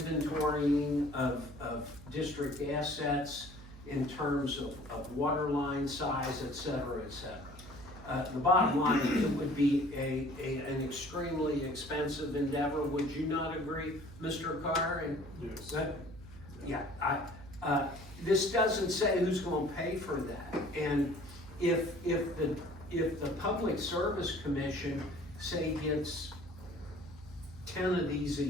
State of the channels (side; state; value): right; noise; hum, 17 dB below the sound